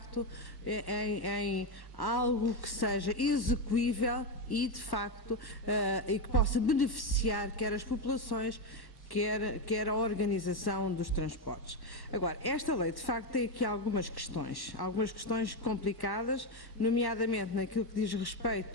em algo que seja execuível e, de facto, e que possa beneficiar quer as populações, quer a organização dos transportes. Agora, esta lei, de facto, tem aqui algumas questões complicadas, nomeadamente naquilo que diz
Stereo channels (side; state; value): right; late; 1.1 ms